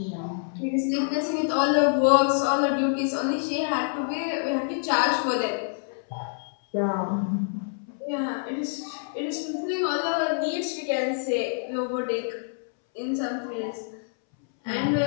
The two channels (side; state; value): right; silent; 61 dB below the other